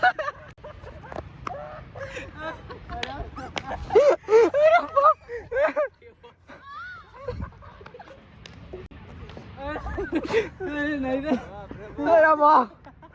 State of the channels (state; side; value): identical; both; correlation 1.00